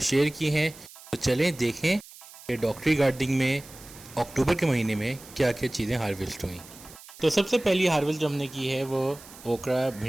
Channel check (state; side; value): noise; right; hiss, 19 dB below the sound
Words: शेयर की हैं। तो चलें देखें कि डॉक्टरी गार्डनिंग में अक्टूबर के महीने में क्या क्या चीज़ें हार्वेस्ट हुई। तो सबसे पहली हार्वेस्ट जो हमने की है वो ओकरा